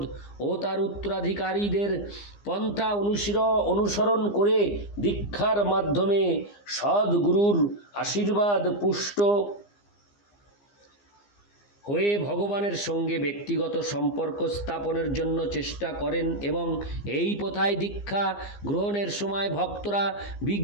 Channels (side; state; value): right; late; 15 ms